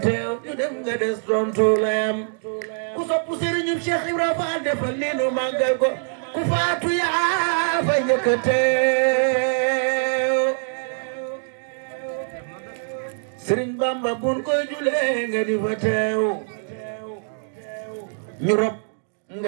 teew ñu dem nga des tontu layam ku sopp Serigne Cheikh Ibra Fall defal ni nu màggal ko ku faatu yaa fa njëkk a teew Serigne Bamba bun koy julee nga di fa teew ñu rob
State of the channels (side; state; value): left; silent; digital silence